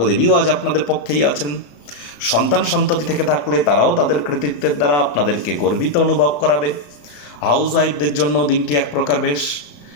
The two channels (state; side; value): late; right; 34 ms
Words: আজ আপনাদের পক্ষেই আছেন। সন্তান সন্ততি থেকে থাকলে তারাও তাদের কৃতিত্বের দ্বারা আপনাদেরকে গর্বিত অনুভব করাবে। হাউস ওয়াইফদের জন্য দিনটি এক প্রকার বেশ।